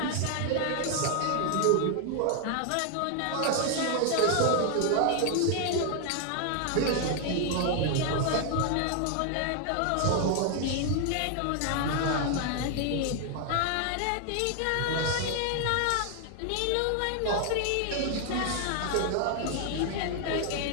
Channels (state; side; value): different; both; correlation 0.00